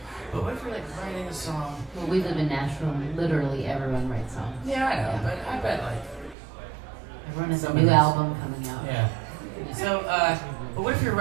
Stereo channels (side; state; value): left; drops out; at 6.4 s